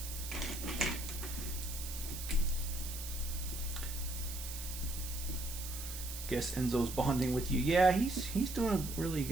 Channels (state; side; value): noise; right; hiss, 8 dB below the sound